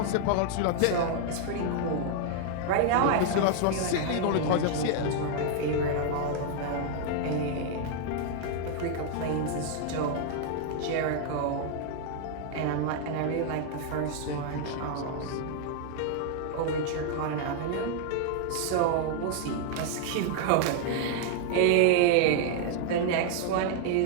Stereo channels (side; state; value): both; different; correlation 0.00